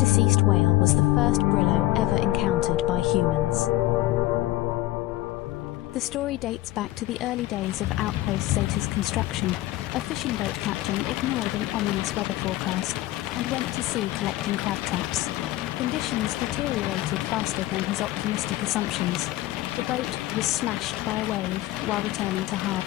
whale was the first Brillo ever encountered by humans. The story dates back to the early days of Outpost Zeta's construction. A fishing boat captain ignored an ominous weather forecast and went to sea collecting crab traps. Conditions deteriorated faster than his optimistic assumptions. The boat was smashed by a wave while returning to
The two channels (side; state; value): right; quieter; 16.6 dB